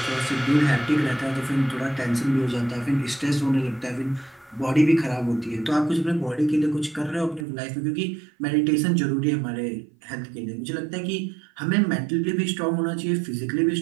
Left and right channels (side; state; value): left; drops out; at 7.5 s